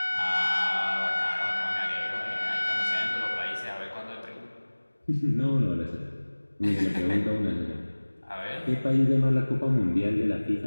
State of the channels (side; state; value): both; inverted; correlation -1.00